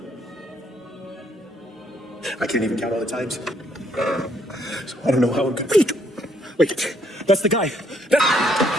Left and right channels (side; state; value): both; normal; correlation 0.69